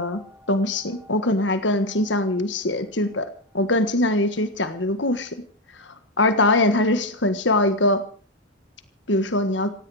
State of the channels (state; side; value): normal; both; correlation 0.07